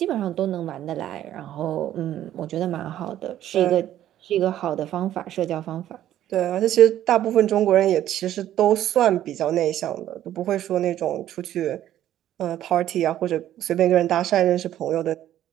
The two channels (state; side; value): quieter; left; 12.2 dB